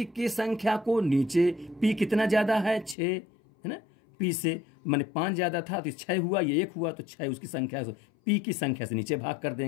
की संख्या को नीचे, पी कितना ज्यादा है? 6 है ना, पी से माने 5 ज्यादा था तो 6 हुआ, ये 1 हुआ तो 6 उसकी संख्या से, पी की संख्या से नीचे भाग कर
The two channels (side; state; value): right; drops out; at 3.0 s